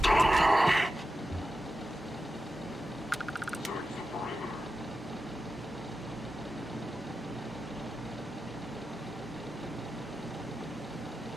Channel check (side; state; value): both; normal; correlation 0.91